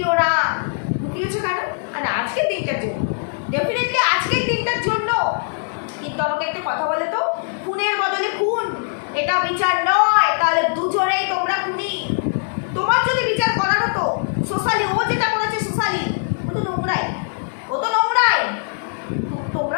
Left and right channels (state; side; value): silent; right; digital silence